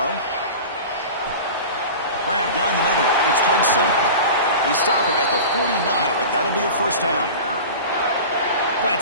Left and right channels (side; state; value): both; inverted; correlation -0.34